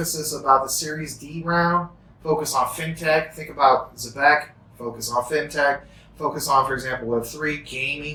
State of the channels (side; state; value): both; identical; correlation 1.00